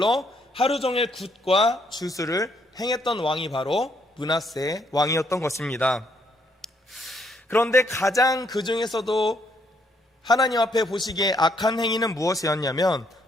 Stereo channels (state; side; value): normal; both; correlation 0.71